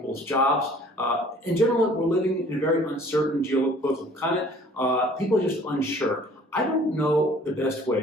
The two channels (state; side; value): normal; both; correlation 0.53